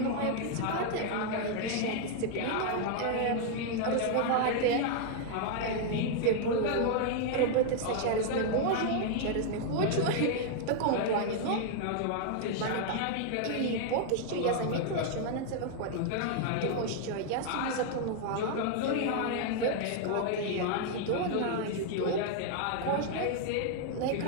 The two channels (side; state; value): both; different; correlation 0.00